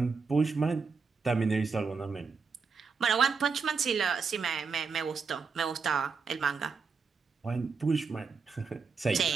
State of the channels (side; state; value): left; quieter; 5.0 dB